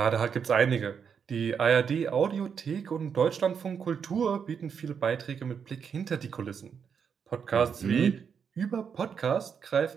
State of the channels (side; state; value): left; quieter; 6.9 dB